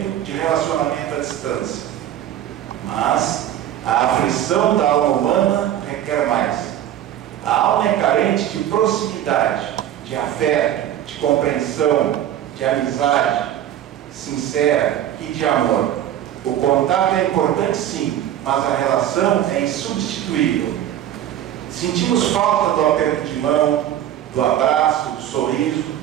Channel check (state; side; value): quieter; left; 11.5 dB